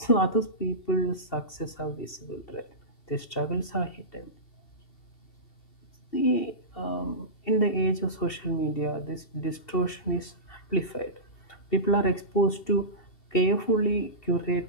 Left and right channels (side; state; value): right; late; 2.7 ms